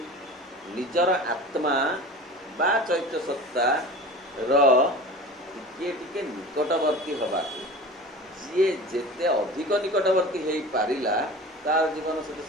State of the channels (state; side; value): normal; both; correlation 0.37